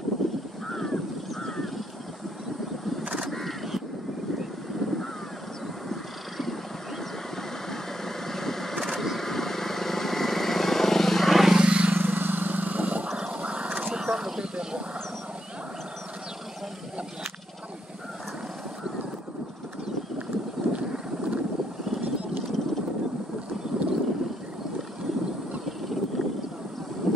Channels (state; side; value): normal; both; correlation 0.78